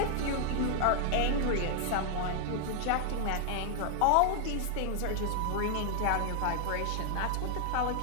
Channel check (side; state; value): both; different; correlation 0.00